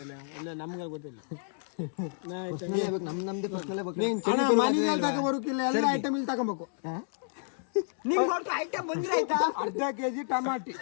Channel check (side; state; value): right; silent; digital silence